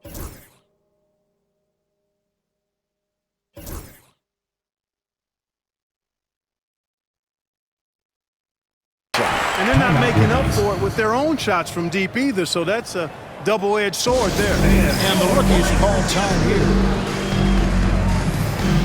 And they're not making up for it with their own shots from deep either, so that's a double-edged sword there. And the rookies call time here.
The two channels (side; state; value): both; identical; correlation 1.00